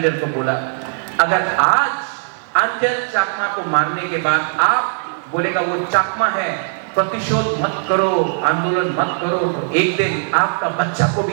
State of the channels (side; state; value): left; silent; 67 dB below the other